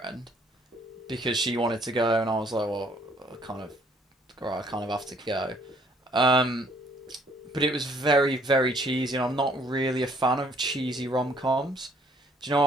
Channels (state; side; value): normal; both; correlation 0.62